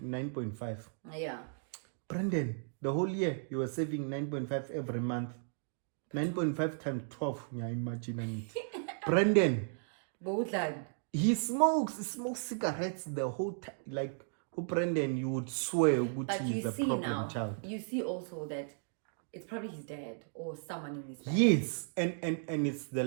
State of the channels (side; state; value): left; silent; digital silence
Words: 9.5. Yeah. Brandon, the whole year you were saving 9.5 every month. 9.5 times 12. Yeah, imagine. Brandon. He smokes cigarettes the whole time. Like, Brandon, you would swear he's a problem child. You see also that it's probably his dad or someone in his family. Yes, and it's the